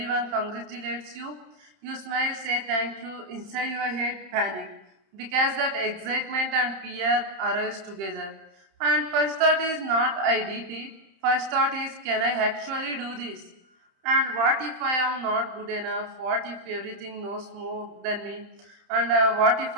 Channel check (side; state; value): left; late; 31 ms